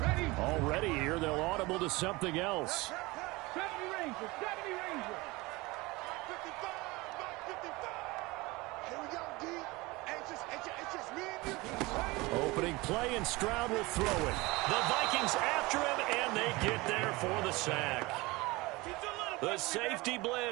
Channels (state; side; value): quieter; left; 22.6 dB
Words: Already here, they'll audible to something else. 70 Rangers, 70 Rangers. 55, 55. Here we go, D. It's just me and you. Opening play, and Stroud will throw it. The Vikings after him, and they get there for the sack. The safety